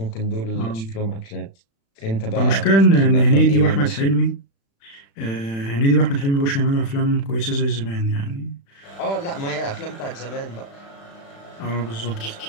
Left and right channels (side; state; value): right; late; 36 ms